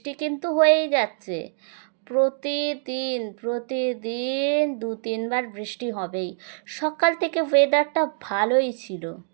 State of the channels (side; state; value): left; silent; digital silence